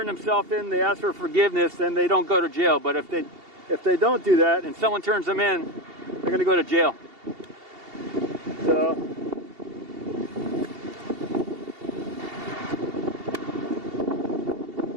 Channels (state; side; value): late; left; 2.8 ms